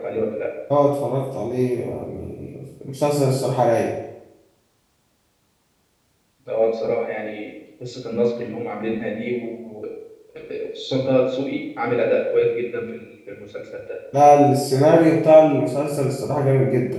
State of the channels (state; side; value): identical; both; correlation 1.00